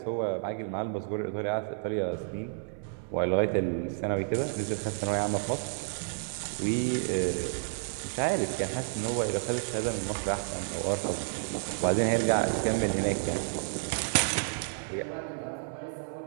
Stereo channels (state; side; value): silent; left; 57 dB below the other